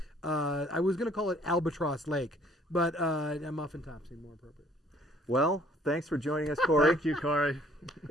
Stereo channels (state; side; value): normal; both; correlation 0.60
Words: I was going to call it Albatross Lake, but Muffin Top seemed more appropriate. Well, thanks for joining us, Corey. Thank you, Corey.